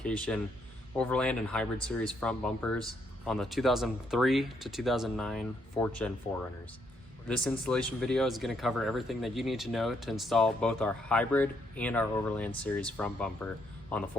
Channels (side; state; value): both; normal; correlation 0.74